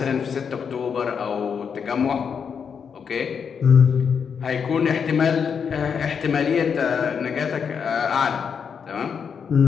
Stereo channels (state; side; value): quieter; right; 6.7 dB